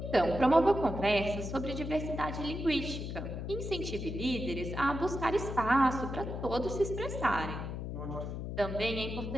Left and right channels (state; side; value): noise; left; hum, 5 dB below the sound